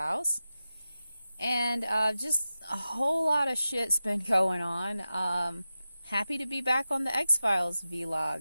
and just a whole lot of shit's been going on. Happy to be back on the X-Files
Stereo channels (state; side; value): inverted; both; correlation -0.93